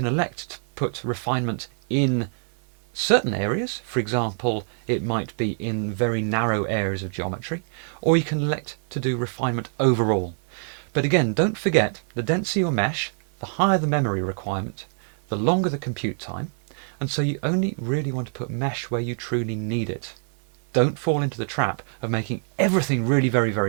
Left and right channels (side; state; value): left; silent; 62 dB below the other